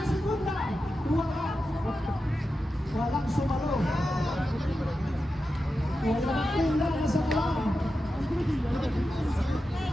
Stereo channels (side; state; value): both; normal; correlation 0.91